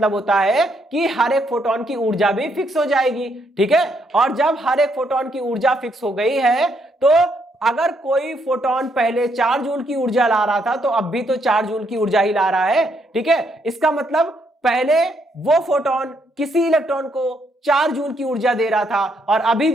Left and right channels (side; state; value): both; normal; correlation 0.74